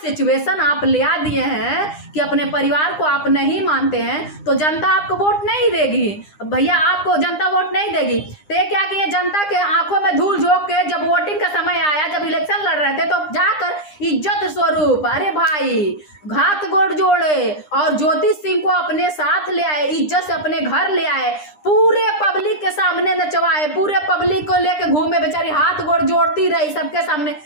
आप ले आ दिए हैं कि अपने परिवार को आप नहीं मानते हैं, तो जनता आपको वोट नहीं देगी भैया, आपको जनता वोट नहीं देगी। तो ये क्या किए, जनता के आंखों में धूल झोंक के, जब वोटिंग का समय आया, जब इलेक्शन लड़ रहे थे, तो जाकर इज्जत स्वरूप अरे भाई हाथ गोड़ जोड़े और ज्योति सिंह को अपने साथ ले आए, इज्जत से अपने घर ले आए, पूरे पब्लिक के सामने नचवाए, पूरे पब्लिक को लेके घूमे, बेचारी हाथ गोड़ जोड़ती रही सबके सामने,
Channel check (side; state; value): right; late; 9.9 ms